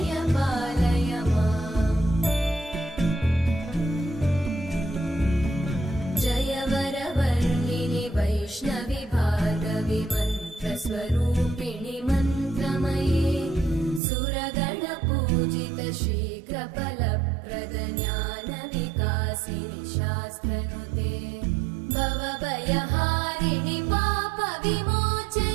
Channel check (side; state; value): left; drops out; at 14.0 s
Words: पालय माम् जय वरवर्णिनि वैष्णवि भार्गवि मन्त्रस्वरूपिणि मन्त्रमये सुरगणपूजित शीघ्रफलप्रद ज्ञानविकासिनि शास्त्रनुते भवभयहारिणि